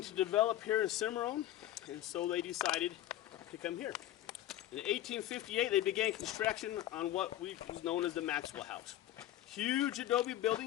to develop here in Cimarron, and so they decided to come here. In 1858, they began construction on what was known as the Maxwell House. Huge adobe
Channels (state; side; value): quieter; right; 13.5 dB